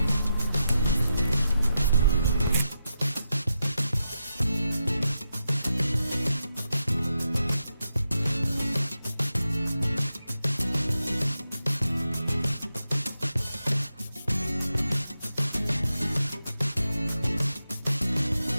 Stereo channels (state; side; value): inverted; both; correlation -0.87